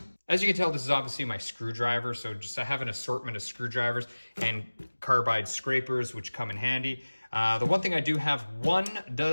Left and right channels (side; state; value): both; inverted; correlation -1.00